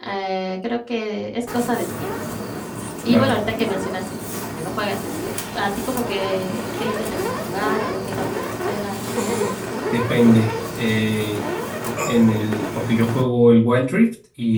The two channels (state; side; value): identical; both; correlation 1.00